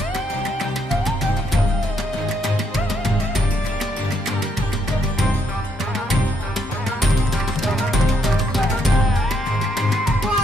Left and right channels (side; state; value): both; normal; correlation 0.75